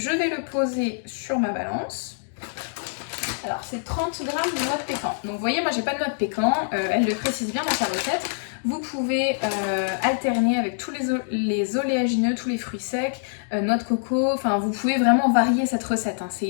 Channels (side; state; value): right; silent; digital silence